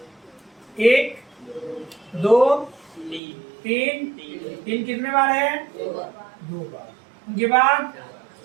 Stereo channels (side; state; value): left; drops out; at 3.2 s